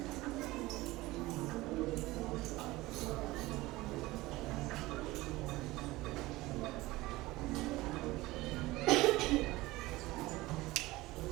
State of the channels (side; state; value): left; quieter; 19.4 dB